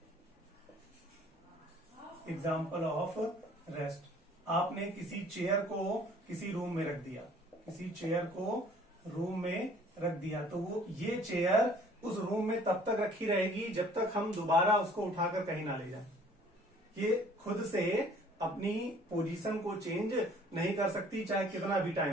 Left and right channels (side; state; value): both; normal; correlation 0.55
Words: एग्जाम्पल ऑफ रेस्ट, आपने किसी चेयर को किसी रूम में रख दिया, किसी चेयर को रूम में रख दिया, तो वो ये चेयर उस रूम में तब तक रखी रहेगी जब तक हम दोबारा उसको उठाकर कहीं ना ले जाए। ये खुद से अपनी पोजीशन को चेंज नहीं कर सकती, चाहे कितना भी